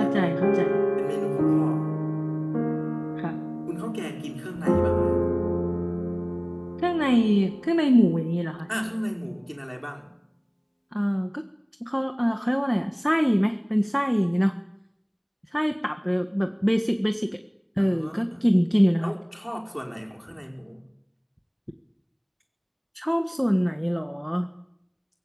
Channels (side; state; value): both; identical; correlation 1.00